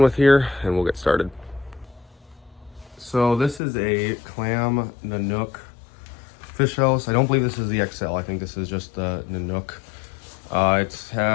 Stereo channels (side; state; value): right; drops out; at 3.6 s